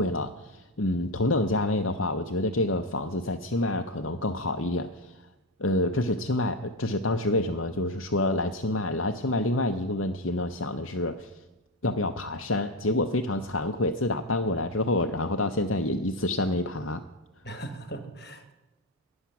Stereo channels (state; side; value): normal; both; correlation 0.11